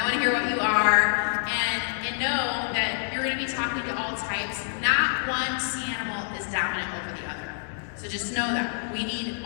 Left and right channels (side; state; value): right; silent; digital silence